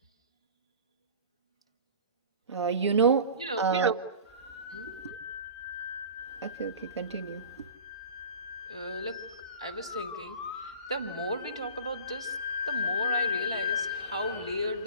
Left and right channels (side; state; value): both; inverted; correlation -0.39